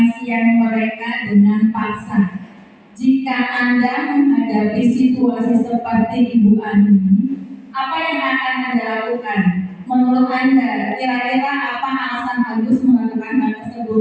siang mereka dengan paksa. Jika Anda menghadapi situasi seperti Ibu Ani, apa yang akan Anda lakukan? Menurut Anda, kira-kira apa alasan Agus melakukan hal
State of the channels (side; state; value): both; identical; correlation 1.00